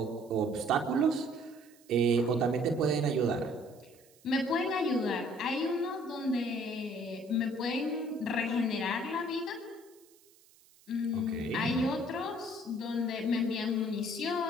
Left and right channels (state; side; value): noise; right; hiss, 28 dB below the sound